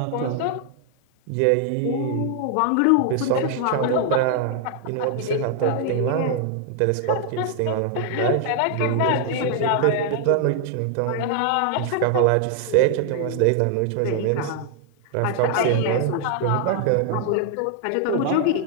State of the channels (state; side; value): different; both; correlation 0.00